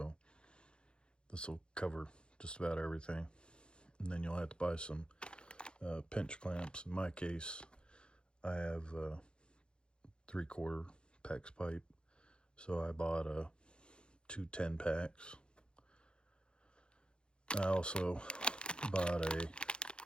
this will cover just about everything. And then you'll have to buy some pinch clamps. In my case, I have 3/4 PEX pipe, so I bought 2 10-packs. I also bought a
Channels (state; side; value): late; right; 0.052 ms